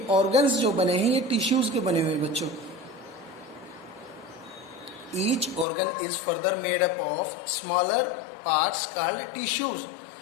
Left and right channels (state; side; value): drops out; right; at 5.7 s